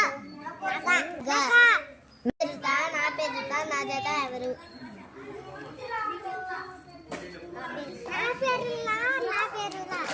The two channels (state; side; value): identical; both; correlation 1.00